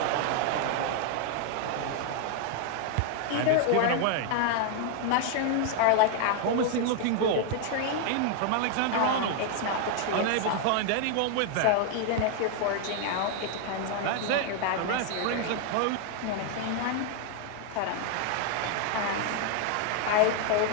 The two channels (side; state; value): both; different; correlation 0.00